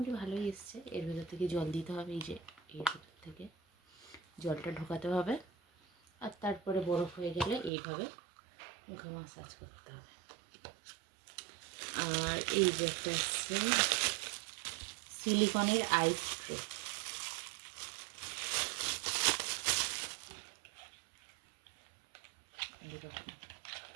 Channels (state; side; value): drops out; left; at 7.7 s